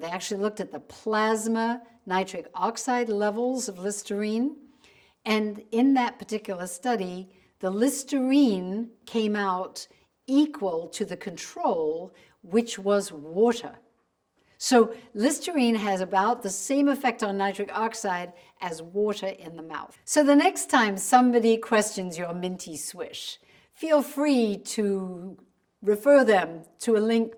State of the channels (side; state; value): both; identical; correlation 1.00